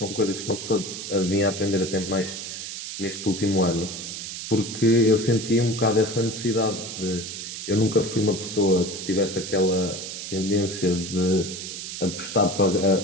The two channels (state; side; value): noise; right; hiss, 8 dB below the sound